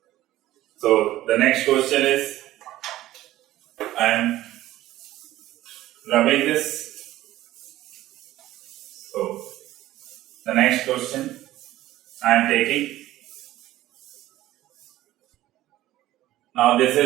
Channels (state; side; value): quieter; left; 15.1 dB